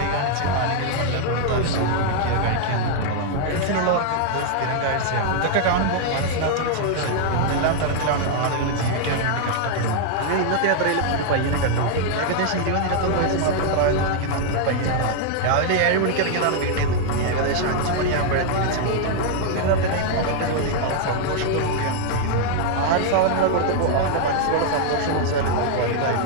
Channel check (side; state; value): both; different; correlation 0.00